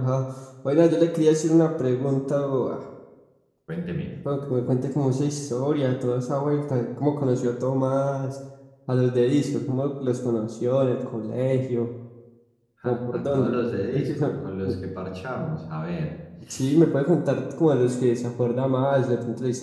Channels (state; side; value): identical; both; correlation 1.00